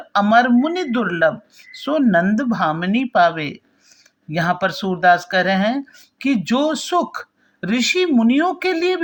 अमर मुनि दुर्लभ सो नंद भामिनी पावे। यहाँ पर सूरदास कह रहे हैं कि जो सुख ऋषि मुनियों के लिए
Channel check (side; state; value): both; identical; correlation 1.00